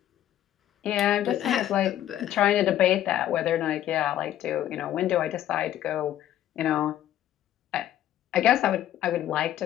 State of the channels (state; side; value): quieter; right; 12.1 dB